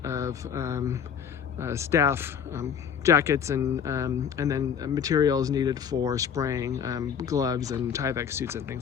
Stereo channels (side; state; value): right; quieter; 7.7 dB